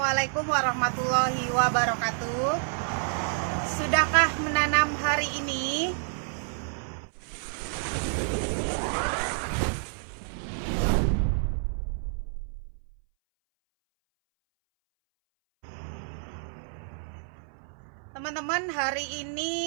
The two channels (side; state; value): left; silent; 59 dB below the other